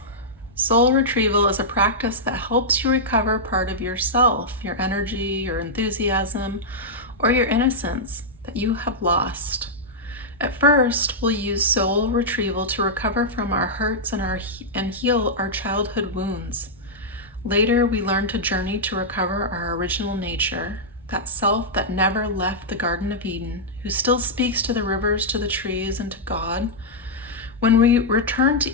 Soul retrieval is a practice that helps you recover part of yourself, your energy, your enthusiasm, or your innocence that you have lost. At first, we'll use soul retrieval to recover from our hurts and heal our childhood wounds. Later, we learn to journey to recover our original nature, that self that never left the Garden of Eden, who still speaks to the rivers, to the trees, and to God. When we return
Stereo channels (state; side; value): normal; both; correlation -0.08